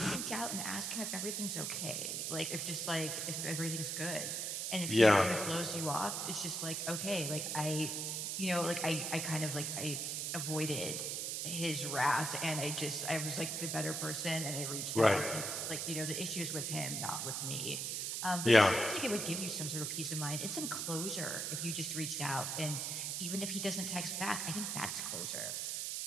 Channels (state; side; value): noise; right; hiss, 2 dB below the sound